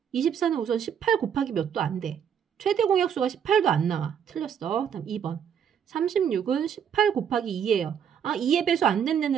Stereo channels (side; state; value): left; quieter; 8.2 dB